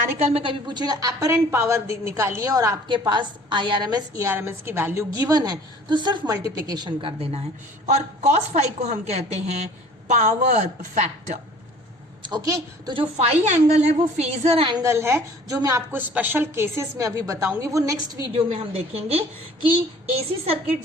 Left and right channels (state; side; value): normal; both; correlation 0.50